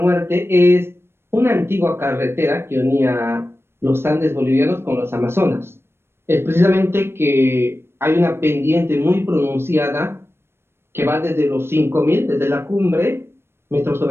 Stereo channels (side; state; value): left; late; 0.12 ms